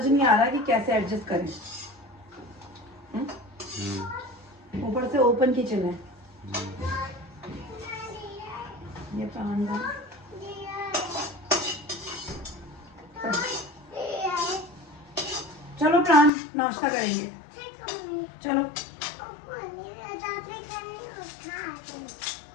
नहीं आ रहा कि कैसे एडजस्ट करें। ऊपर से ओपन किचन है। ये प्राण चलो प्राण नाश्ता करेंगे, चलो।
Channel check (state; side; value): drops out; right; at 16.3 s